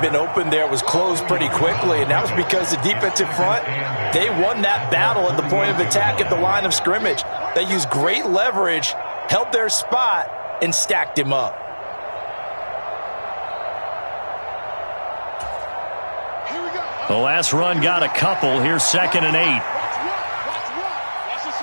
been open there was closed pretty quickly, and that was because the defensive front, they won that battle at the point of attack at the line of scrimmage. They used great leverage, held their spot, and stacked him up. The last run got a couple. Here's 2nd and 8.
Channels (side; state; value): both; inverted; correlation -1.00